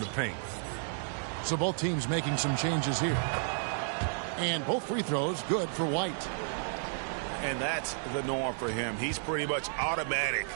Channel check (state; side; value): silent; left; digital silence